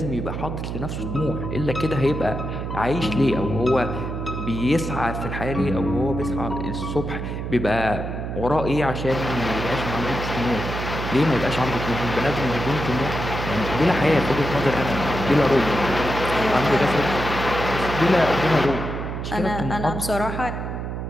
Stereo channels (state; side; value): noise; right; hum, 5 dB below the sound